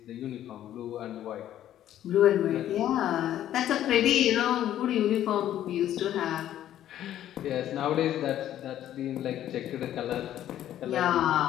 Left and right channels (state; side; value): quieter; right; 11.9 dB